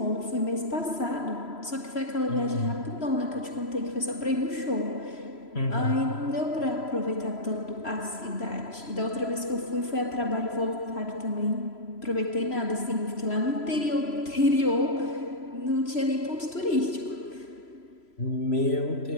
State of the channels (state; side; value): late; right; 3.0 ms